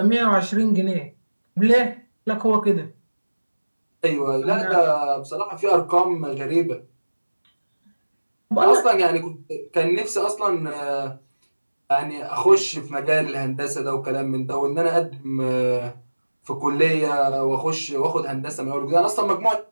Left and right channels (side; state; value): both; inverted; correlation -1.00